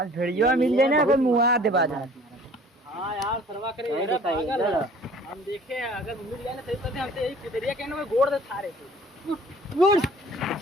भेड़िया मिल जाए ना कोई मुआ दे बाजा। हाँ यार सरवा करे मेरा पागल हम देखे अगर मिल जाए ना सही तो हमसे यही कुदरिया कहने में गोड़ दे थारे थे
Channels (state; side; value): normal; both; correlation 0.50